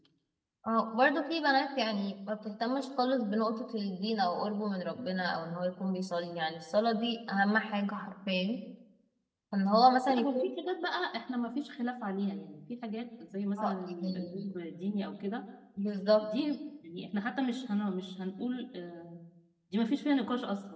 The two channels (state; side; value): identical; both; correlation 1.00